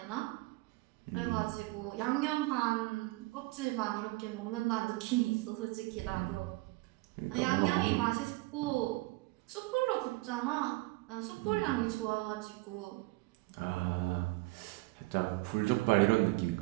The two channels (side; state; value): left; quieter; 22.2 dB